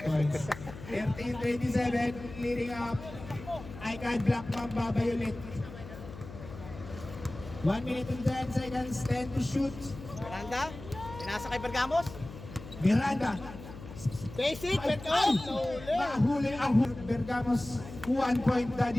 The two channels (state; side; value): noise; left; hum, 14 dB below the sound